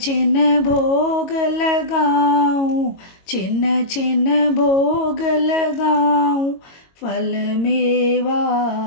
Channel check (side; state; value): right; late; 22 ms